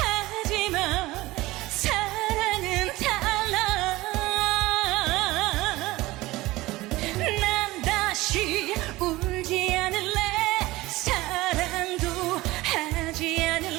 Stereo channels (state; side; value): quieter; left; 19.2 dB